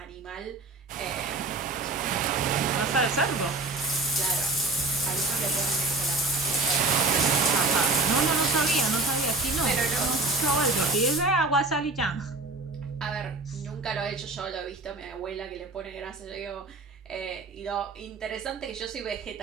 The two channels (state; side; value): quieter; left; 3.2 dB